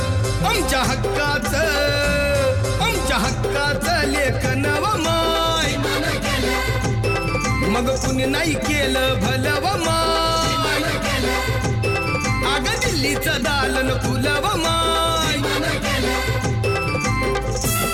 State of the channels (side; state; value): both; identical; correlation 1.00